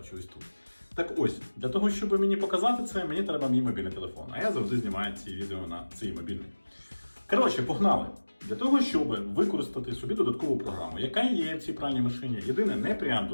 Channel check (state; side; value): inverted; both; correlation -1.00